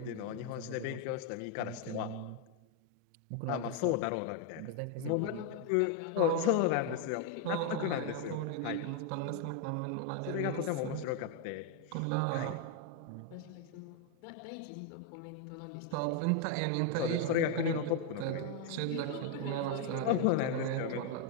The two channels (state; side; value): different; both; correlation 0.01